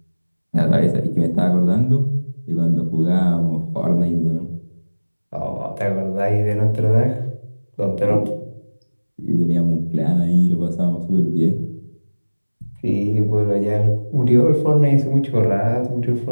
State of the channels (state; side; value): inverted; both; correlation -1.00